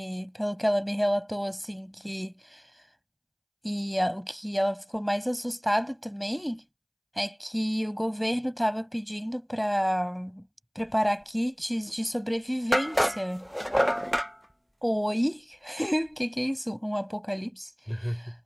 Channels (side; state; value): both; identical; correlation 1.00